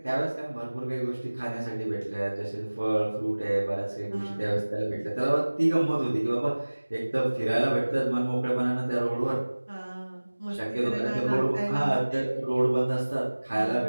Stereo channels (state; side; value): inverted; both; correlation -1.00